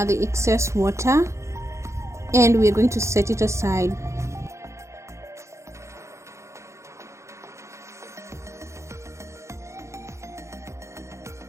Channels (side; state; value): left; late; 0.14 ms